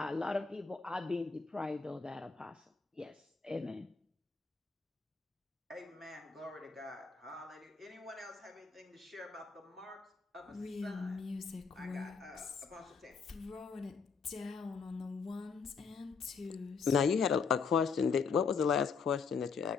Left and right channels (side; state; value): right; quieter; 5.5 dB